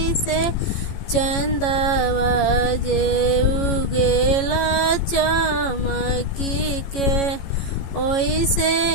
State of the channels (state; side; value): late; right; 14 ms